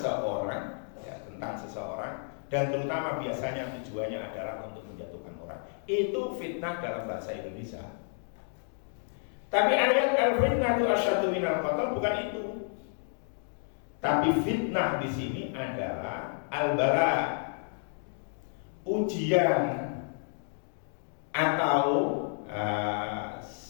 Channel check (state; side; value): silent; right; 57 dB below the other